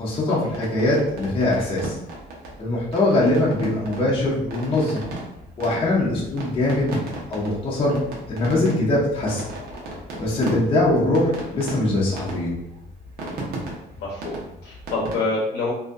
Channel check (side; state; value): both; normal; correlation 0.53